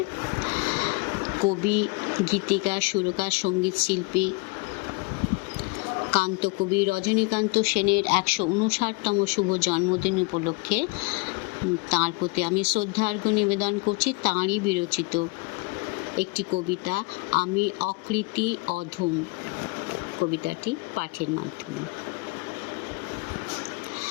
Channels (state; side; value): quieter; right; 27.3 dB